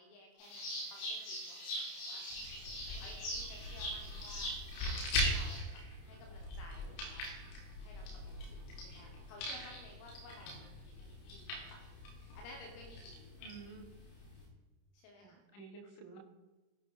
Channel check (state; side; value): late; right; 30 ms